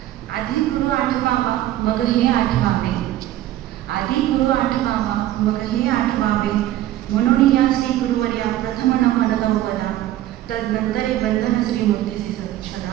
आधी गुरु आठवावा मग हे आठवावे, आधी गुरु आठवावा मग हे आठवावे, म्हणून या श्री गुरुवर्या प्रथम नमन गौपदा, तदनंतरे बंधन श्री मूर्तीसी सदा.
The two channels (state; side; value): quieter; left; 13.9 dB